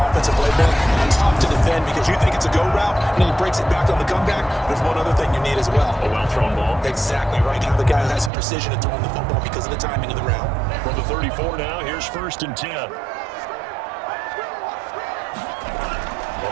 offensive playbook. It's tough to defend because you think it's a go route, and then he breaks it back on the comeback. There's one other thing you need as well. A well-thrown ball. Exactly right. Have the guy who has some precision in throwing the football because of the timing of the route. From the 34 now, here's 1st and 10.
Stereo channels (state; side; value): drops out; left; at 8.3 s